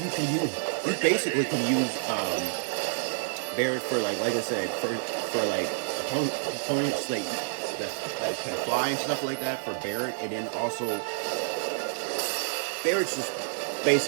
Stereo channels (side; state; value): left; silent; digital silence